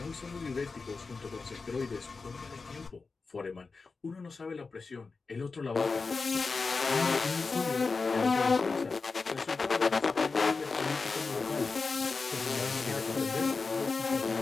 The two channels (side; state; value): right; quieter; 4.3 dB